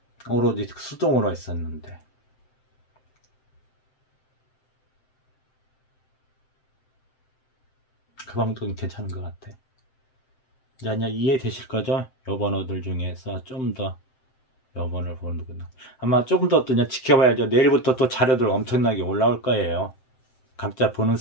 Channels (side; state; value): right; late; 7.7 ms